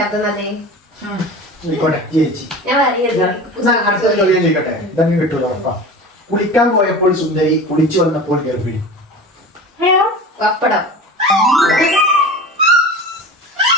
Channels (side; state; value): both; normal; correlation 0.34